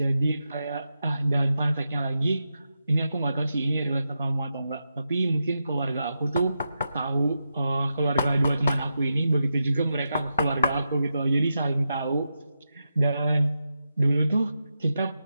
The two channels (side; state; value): both; inverted; correlation -0.88